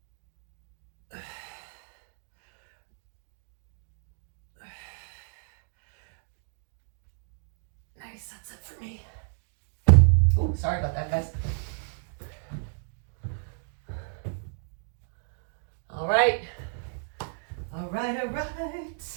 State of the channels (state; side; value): silent; left; digital silence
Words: Nice, that's it for me. Ooh, sorry about that, guys. All right. All right, all